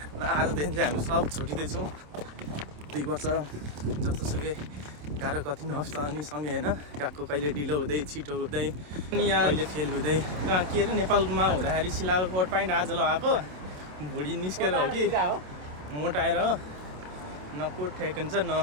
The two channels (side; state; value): left; late; 27 ms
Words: र आजदेखि चाहिँ हामी सब छुटिँदैछौँ। 2 वर्ष जस्तोसुकै गाह्रो कति नहोस् त अनि सँगै होइन गएको, कहिले ढिलो हुँदै छिटो हुँदै अनि यहाँ कहिले फेल हुँदै कहाँ के अरे नेपालमा हुँदाखेरि सिलाएको कोट प्यान्ट आज लगाएको भुँडी निस्केर हो कि मोटाएर हो, न कोट ठिक हुन्छ